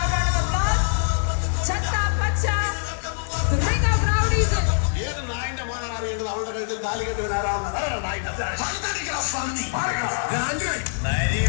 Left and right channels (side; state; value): right; silent; 63 dB below the other